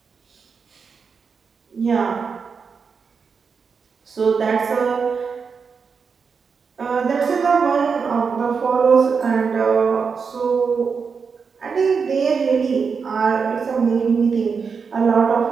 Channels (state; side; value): quieter; left; 5.6 dB